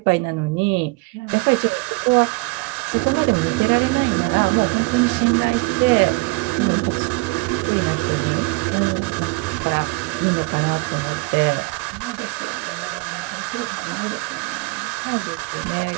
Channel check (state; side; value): quieter; left; 26.2 dB